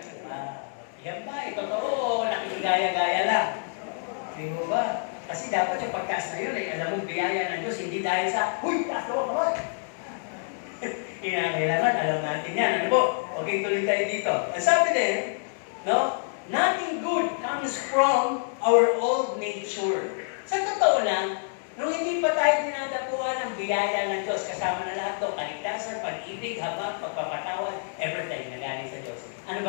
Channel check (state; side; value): silent; right; 60 dB below the other